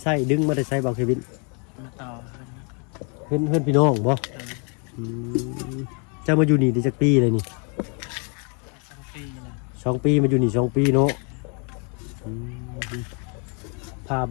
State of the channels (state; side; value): quieter; right; 36.8 dB